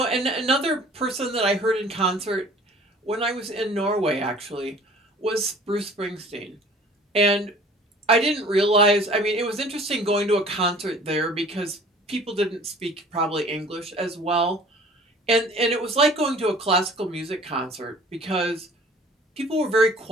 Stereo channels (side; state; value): both; normal; correlation 0.49